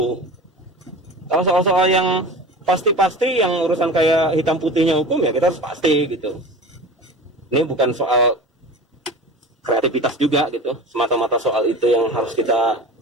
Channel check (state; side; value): normal; both; correlation 0.35